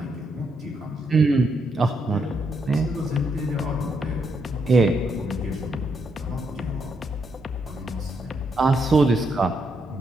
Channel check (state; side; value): normal; both; correlation 0.78